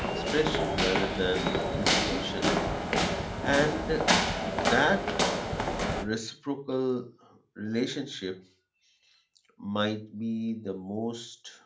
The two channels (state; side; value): identical; both; correlation 1.00